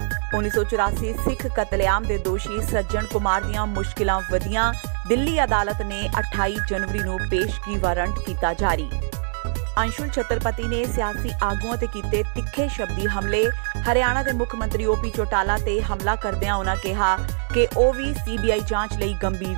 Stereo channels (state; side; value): silent; left; digital silence